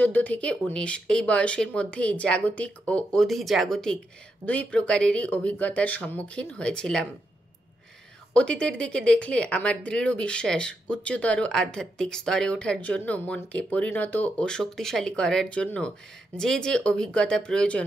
থেকে 19 এই বয়সের মধ্যেই জাগতিক ও অধিজাগতিক 2 প্রকারেরই অভিজ্ঞতার সম্মুখীন হয়েছিলাম। অতীতের দিকে দেখলে আমার দৃঢ় বিশ্বাস, উচ্চতর আধ্যাত্মিক স্তরে ওঠার জন্য, মনকে পরিণত ও শক্তিশালী করার জন্য যে যে অভিজ্ঞতা প্রয়োজন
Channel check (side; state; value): both; normal; correlation 0.83